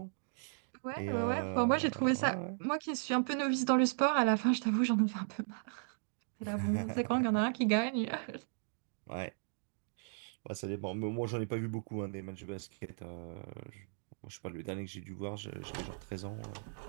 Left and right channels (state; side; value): silent; left; digital silence